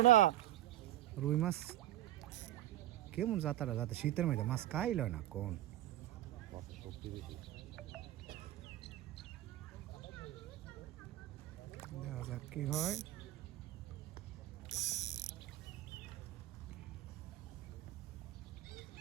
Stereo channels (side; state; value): left; quieter; 14.5 dB